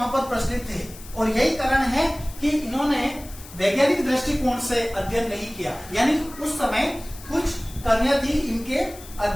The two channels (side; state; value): left; noise; hiss, 18 dB below the sound